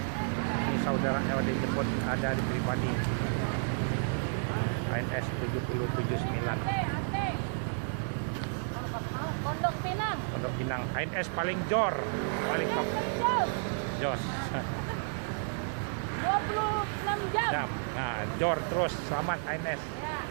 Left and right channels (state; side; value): silent; left; digital silence